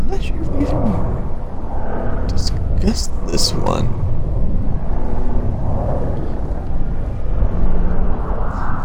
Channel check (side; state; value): both; identical; correlation 1.00